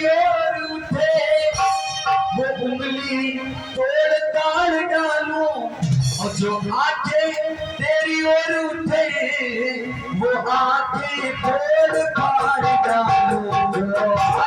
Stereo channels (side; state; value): both; identical; correlation 1.00